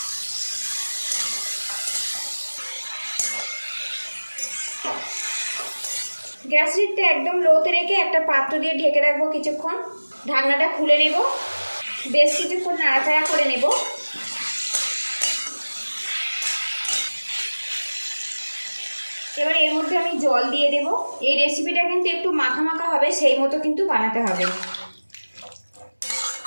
গ্যাস হিটটা একদম লোতে রেখে একটা পাত্র দিয়ে ঢেকে রাখবো কিছুক্ষণ। ঢাকনাটা খুলে নেব, বেশ কিছুক্ষণ নাড়াচাড়া করে নেব। এবার এর মধ্যে আমি জল দিয়ে দেব। এই রেসিপিটা কিন্তু একটু মাখা মাখা হবে, সেই মতো কিন্তু বানাতে হবে।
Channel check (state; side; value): inverted; both; correlation -1.00